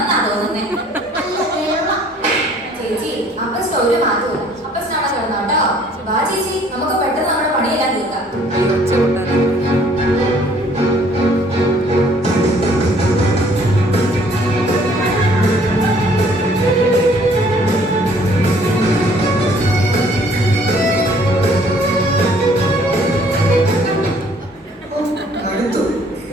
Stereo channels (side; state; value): both; normal; correlation 0.59